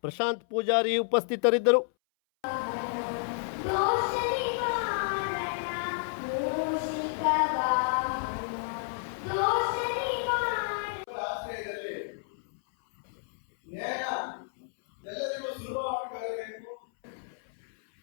ಪ್ರಶಾಂತ್ ಪೂಜಾರಿ ಉಪಸ್ಥಿತರಿದ್ದರು.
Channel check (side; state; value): right; silent; 58 dB below the other